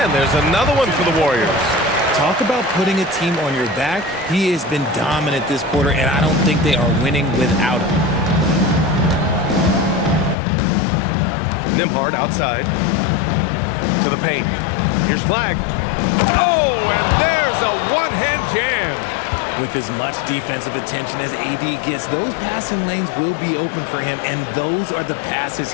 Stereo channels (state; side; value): drops out; right; at 10.4 s